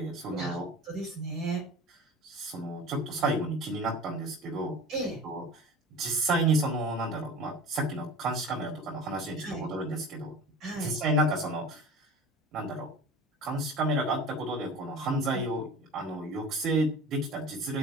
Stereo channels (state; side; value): normal; both; correlation 0.38